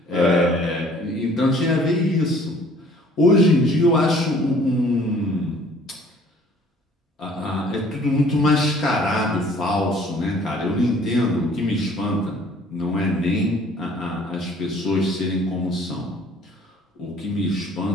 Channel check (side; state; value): both; normal; correlation 0.55